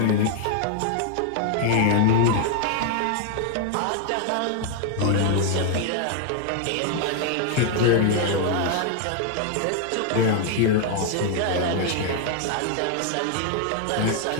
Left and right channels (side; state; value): both; different; correlation 0.00